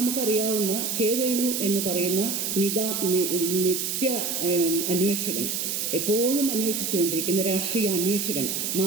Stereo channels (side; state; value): right; noise; hiss, 1 dB below the sound